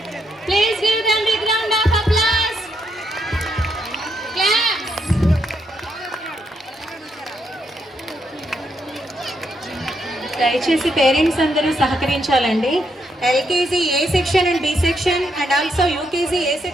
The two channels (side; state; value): both; normal; correlation 0.78